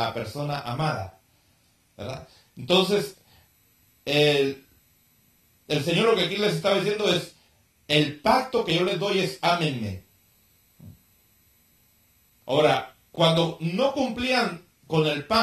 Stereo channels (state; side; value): identical; both; correlation 1.00